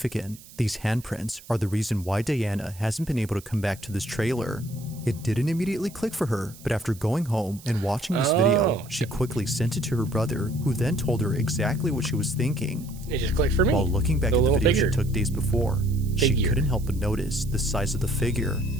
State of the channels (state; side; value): noise; right; hiss, 20 dB below the sound